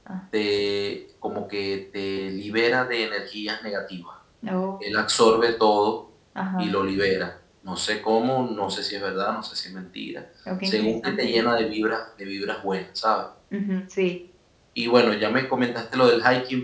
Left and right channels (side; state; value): both; identical; correlation 1.00